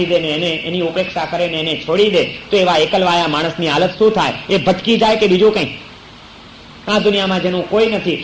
દે ને એને એની ઉપેક્ષા કરે ને એને છોડી દે, તો એવા એકલવાયા માણસની હાલત શું થાય? એ ભટકી જાય કે બીજું કંઈ? આ દુનિયામાં જેનું કોઈ નથી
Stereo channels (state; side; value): identical; both; correlation 1.00